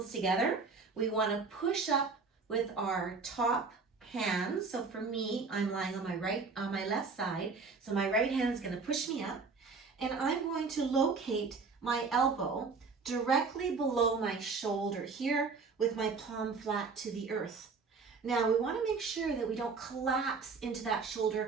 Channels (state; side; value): quieter; left; 4.7 dB